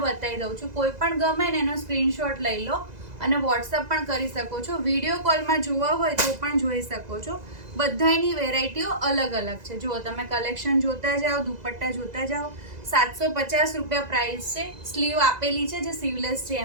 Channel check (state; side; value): late; left; 2.0 ms